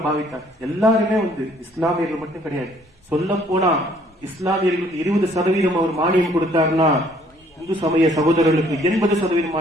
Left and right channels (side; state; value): both; normal; correlation 0.61